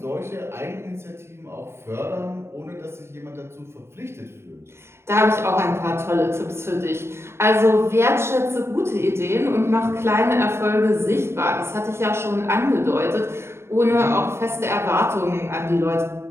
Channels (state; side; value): late; left; 0.12 ms